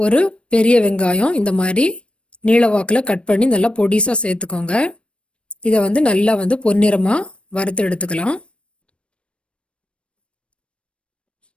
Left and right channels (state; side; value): late; right; 0.059 ms